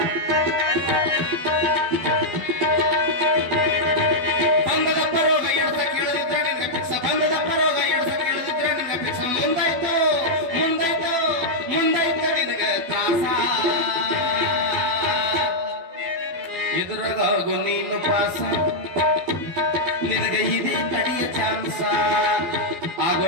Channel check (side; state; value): left; late; 12 ms